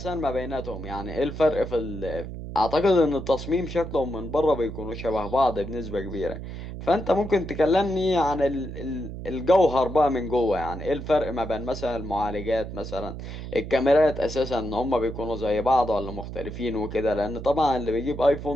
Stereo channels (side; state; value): right; noise; hum, 9 dB below the sound